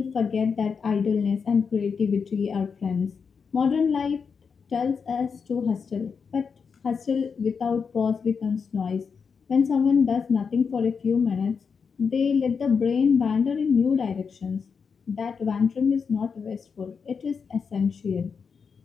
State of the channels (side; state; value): right; quieter; 5.8 dB